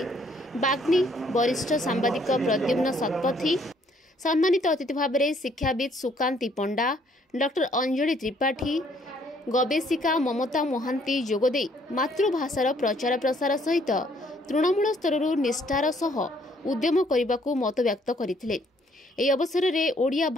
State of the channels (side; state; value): both; normal; correlation 0.65